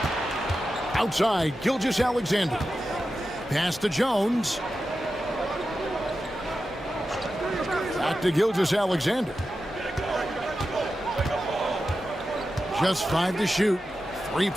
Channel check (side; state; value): both; normal; correlation 0.91